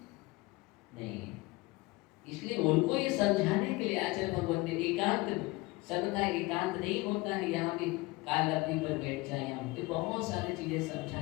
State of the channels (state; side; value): quieter; right; 22.1 dB